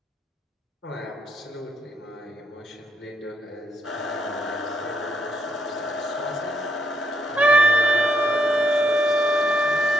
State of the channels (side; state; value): both; normal; correlation 0.76